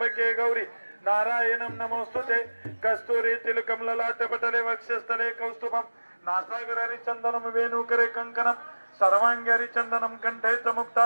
गौरी नारायणं नमोस्तुते. कस्तुरी तिलकमललाट पटले वक्षस्थले कौस्तुभं नासागरारि चंदनं वेणुकरे कंकणं सर्वांगी चंदनं कंठे च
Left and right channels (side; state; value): both; inverted; correlation -1.00